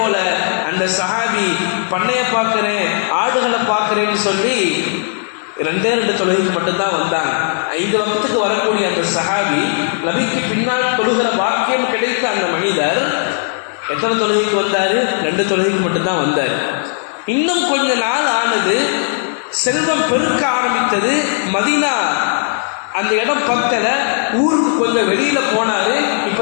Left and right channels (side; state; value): right; silent; 69 dB below the other